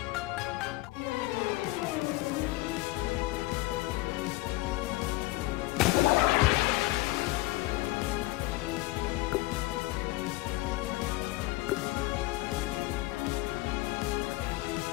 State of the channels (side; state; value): right; quieter; 19.7 dB